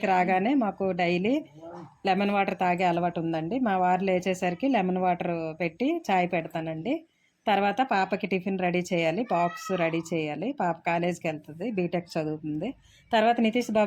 రాగానే మాకు డైలీ లెమన్ వాటర్ తాగే అలవాటు ఉందండి. మా వారు లేచేసరికి లెమన్ వాటర్ పెట్టి చాయ్ పెడతానండి. తర్వాత పాపకి టిఫిన్ రెడీ చేయాలి, బాక్స్ రెడీ చేయాలి. పాప కాలేజీకి వెళ్తుంది, బీటెక్ చదువుతుంది. తర్వాత నితీష్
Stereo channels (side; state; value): both; identical; correlation 1.00